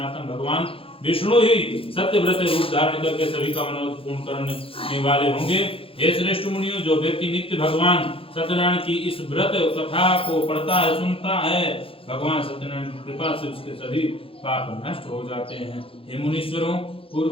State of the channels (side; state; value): right; late; 0.27 ms